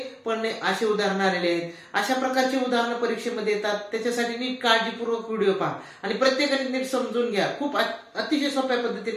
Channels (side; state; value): both; identical; correlation 1.00